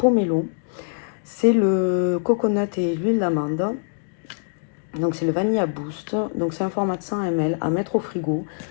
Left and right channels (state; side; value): silent; right; digital silence